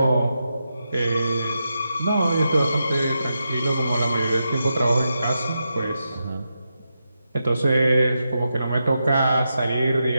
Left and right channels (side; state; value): both; inverted; correlation -0.87